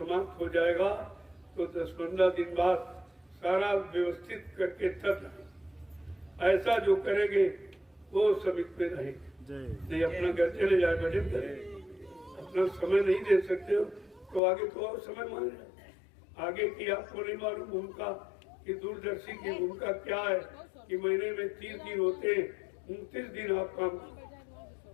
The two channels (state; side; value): drops out; right; at 14.4 s